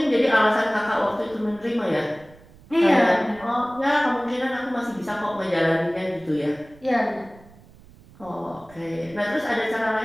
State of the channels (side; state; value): right; noise; rumble, 24 dB below the sound